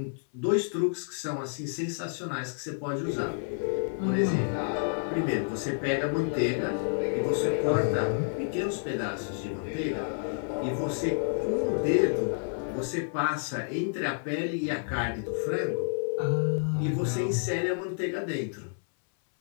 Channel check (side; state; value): right; silent; 58 dB below the other